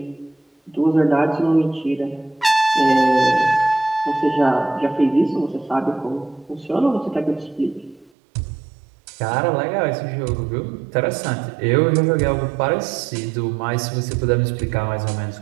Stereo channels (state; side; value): drops out; left; at 8.1 s